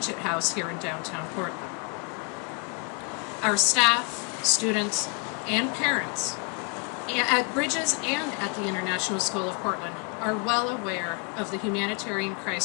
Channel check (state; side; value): quieter; right; 31.4 dB